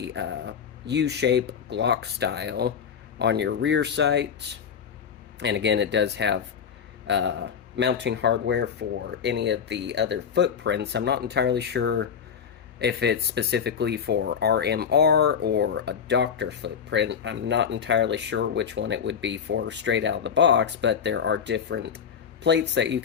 U-shape Glock style on your rear sight. And again, it does have mounting hardware for any of the other footprints. I'm not entirely sure if it's specifically for RMR or a doctor footprint. I'm not entirely sure which one it would be for straight out of the box, but there are different plates that you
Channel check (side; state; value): right; quieter; 7.3 dB